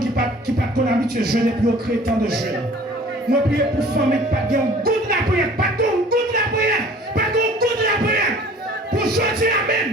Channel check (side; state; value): both; normal; correlation 0.49